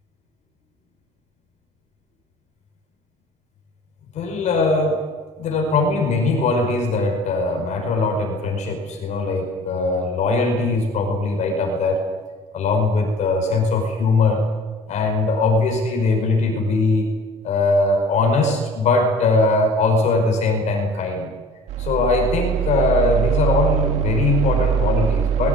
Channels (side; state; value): both; normal; correlation 0.46